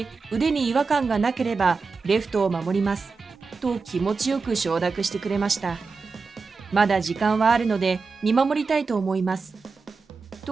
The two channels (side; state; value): left; quieter; 4.6 dB